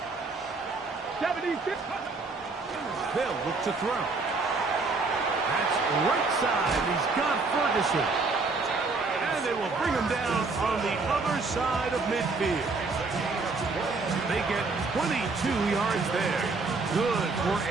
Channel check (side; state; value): left; quieter; 3.9 dB